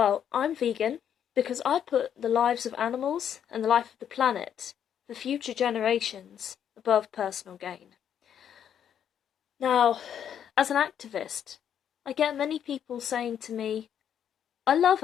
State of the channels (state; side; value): quieter; right; 9.1 dB